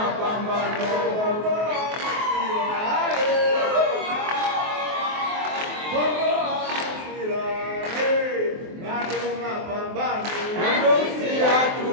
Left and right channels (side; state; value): left; late; 23 ms